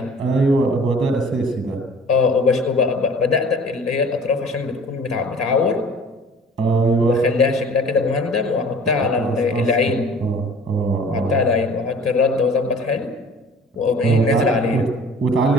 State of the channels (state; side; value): normal; both; correlation 0.47